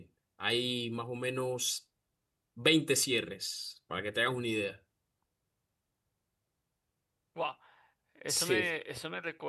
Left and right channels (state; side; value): identical; both; correlation 1.00